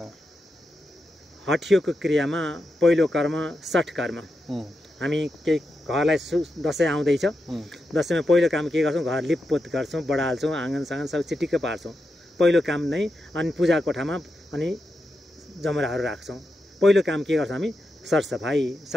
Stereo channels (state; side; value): normal; both; correlation 0.87